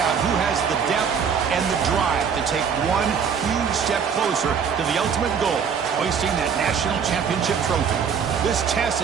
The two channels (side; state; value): left; quieter; 6.8 dB